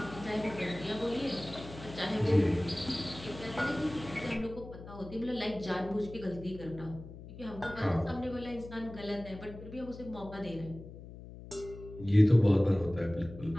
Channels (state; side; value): noise; left; hum, 14 dB below the sound